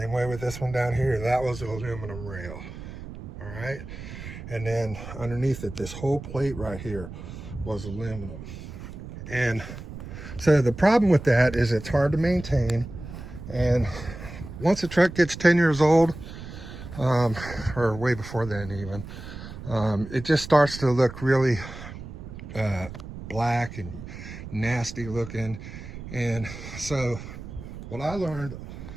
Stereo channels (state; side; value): noise; right; rumble, 11 dB below the sound